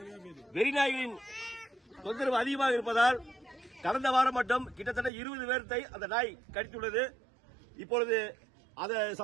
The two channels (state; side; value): drops out; left; at 5.1 s